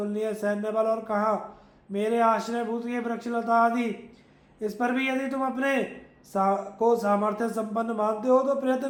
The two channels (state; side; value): identical; both; correlation 1.00